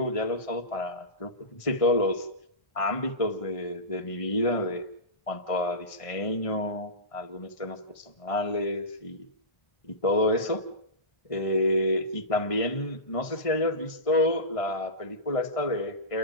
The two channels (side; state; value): right; late; 1.6 ms